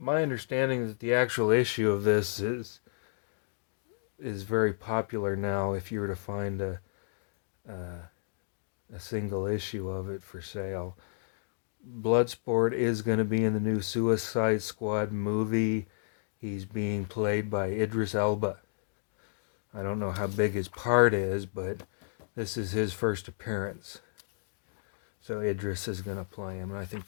understanding that the actual issue of this is very popular now. If you were to find a single issue of it for sale, Bloodsport is going to be in the new Suicide Squad movie. He's being played by Idris Elba. I don't know how big his part is, but this is his first appearance. So Idris is going to play him, and I think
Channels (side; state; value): right; silent; digital silence